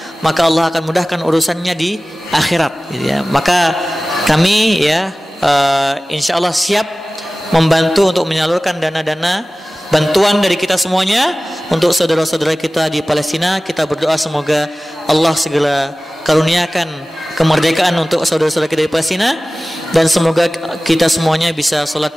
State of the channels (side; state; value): both; normal; correlation 0.97